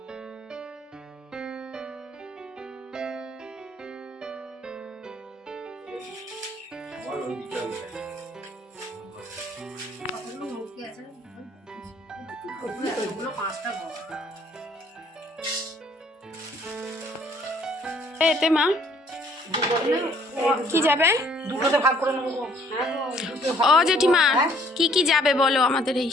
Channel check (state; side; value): normal; both; correlation 0.61